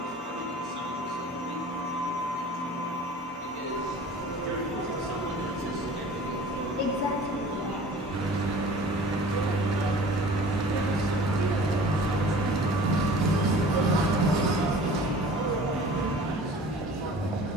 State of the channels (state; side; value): normal; both; correlation 0.44